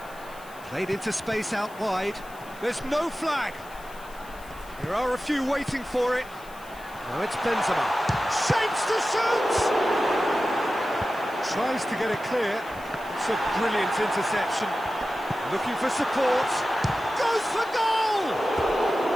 played into space out wide. There's no flag. There are a few waiting for it. Now it's Benzema. Shapes to shoot! Tries to get it clear. It's a brilliant interception. Looking for support. Goes for goal!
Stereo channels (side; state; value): left; noise; hiss, 22 dB below the sound